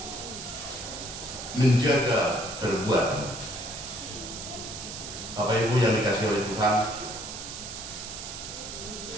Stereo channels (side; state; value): right; noise; hiss, 9 dB below the sound